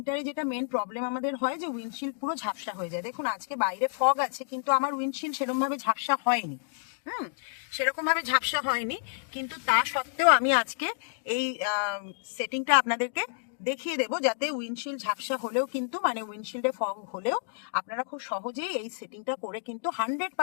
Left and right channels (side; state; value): right; silent; digital silence